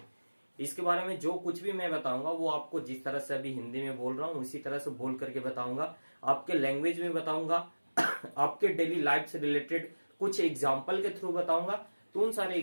इसके बारे में जो कुछ भी मैं बताऊंगा वो आपको जिस तरह से अभी हिंदी में बोल रहा हूँ उसी तरह से बोल करके बताऊंगा, आपके लैंग्वेज में बताऊंगा, आपके डेली लाइफ से रिलेटेड कुछ एग्जाम्पल के थ्रू बताऊंगा। तो उन सारे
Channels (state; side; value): inverted; both; correlation -1.00